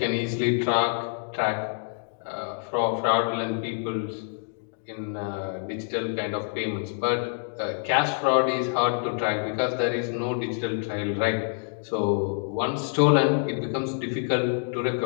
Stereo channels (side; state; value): right; silent; digital silence